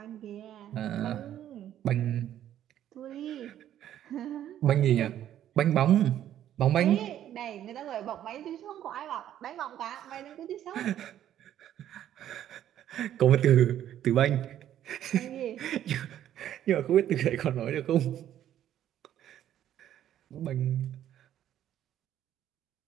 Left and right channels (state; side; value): quieter; left; 11.3 dB